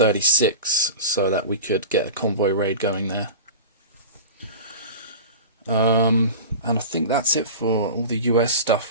so that we could get a convoy raid going there. And I think that's it for all the US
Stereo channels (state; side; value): inverted; both; correlation -0.32